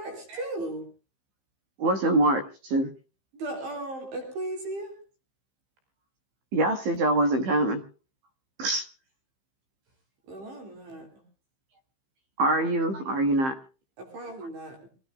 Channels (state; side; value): late; left; 15 ms